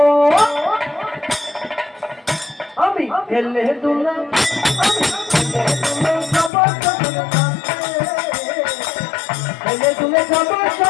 আমি হেলে দুলে হেলে দুলে যাব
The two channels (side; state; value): right; drops out; at 6.5 s